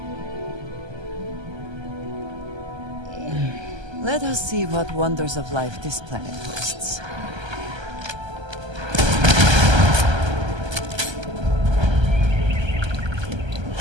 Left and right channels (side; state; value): left; late; 1.3 ms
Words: Let us see what wonders of life this planet hosts.